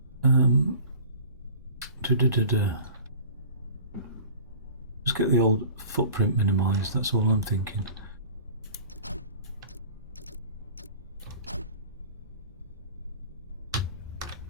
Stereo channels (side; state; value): both; inverted; correlation -0.43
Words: Just get the old footprint minimised, that's all I'm thinking.